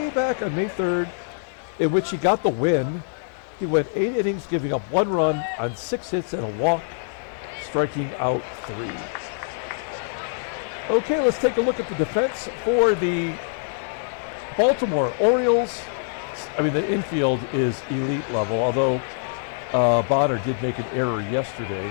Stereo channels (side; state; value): right; silent; 62 dB below the other